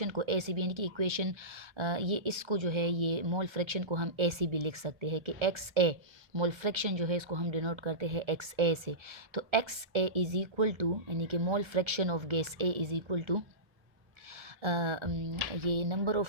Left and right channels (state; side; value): late; left; 1.3 ms